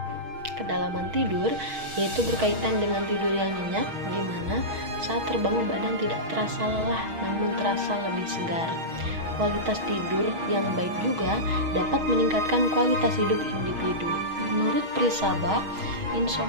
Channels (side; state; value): left; late; 6.3 ms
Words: Kedalaman tidur yaitu berkaitan dengan tidur yang nyenyak, di mana saat terbangun badan tidak terasa lelah namun terasa lebih segar. Kualitas tidur yang baik juga dapat meningkatkan kualitas hidup individu. Menurut Prisaba,